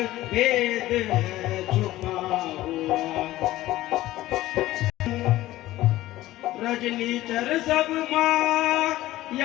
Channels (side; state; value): right; quieter; 16.0 dB